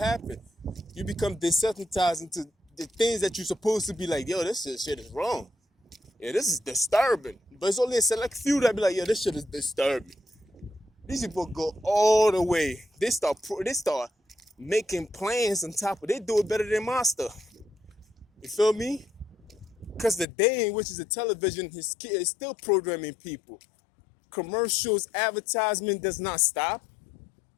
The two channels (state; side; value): drops out; right; at 20.2 s